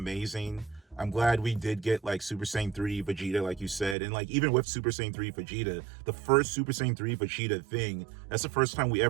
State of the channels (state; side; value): drops out; left; at 4.0 s